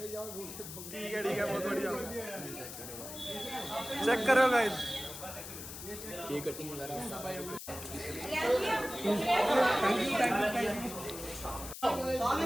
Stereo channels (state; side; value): noise; left; hiss, 10 dB below the sound